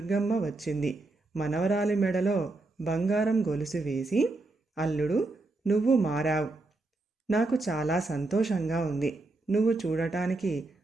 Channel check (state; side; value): quieter; left; 3.1 dB